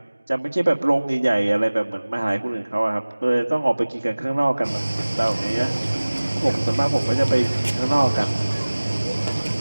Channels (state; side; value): inverted; both; correlation -1.00